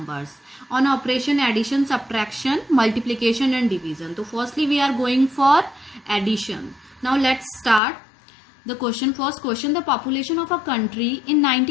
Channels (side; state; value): right; drops out; at 7.8 s